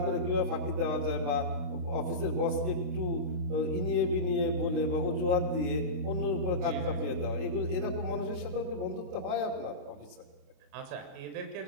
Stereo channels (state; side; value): late; left; 28 ms